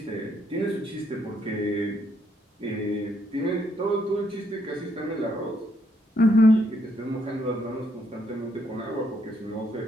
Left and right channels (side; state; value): both; normal; correlation 0.73